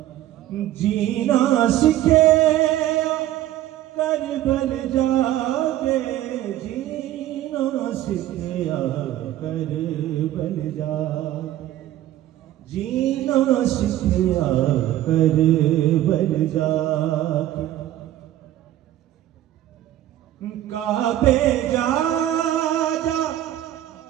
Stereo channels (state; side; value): quieter; left; 13.5 dB